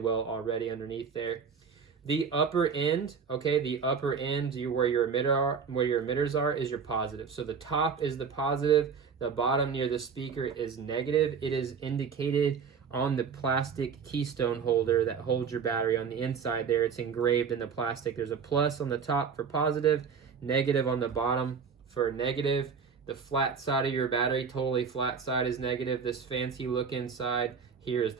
already underneath there. The upper end, where your emitters are, is your positive. So the top is the positive, the bottom near the speaker is negative. It is indicated on the plastic keystone holder that holds your battery on the inside there. It's engraved in the plastic. There's a plus on the top for positive, negative on the bottom for negative. The flat side of your battery, totally flat side, is negative. This fancy look inside here is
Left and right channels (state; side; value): quieter; left; 6.1 dB